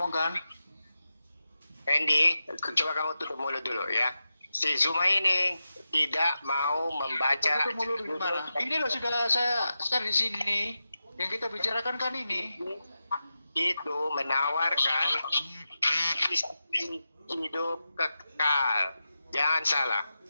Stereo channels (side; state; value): both; inverted; correlation -0.91